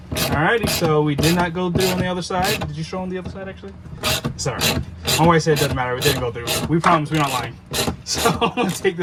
so we did not go through on the other side. Did you show on the other side actually? Sorry. My wife said it doesn't matter. We didn't go through. We promise we're not lying. So I'm gonna take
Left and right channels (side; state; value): both; identical; correlation 1.00